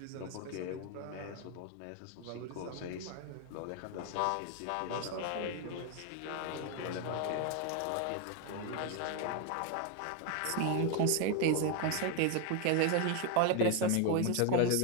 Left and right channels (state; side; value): different; both; correlation 0.01